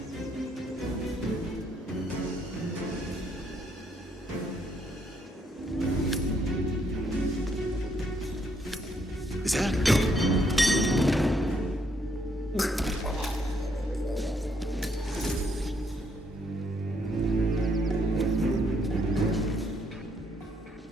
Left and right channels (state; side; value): normal; both; correlation 0.72